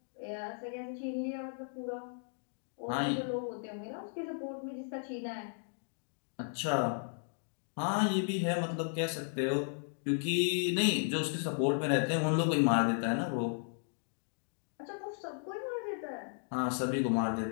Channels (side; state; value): right; silent; digital silence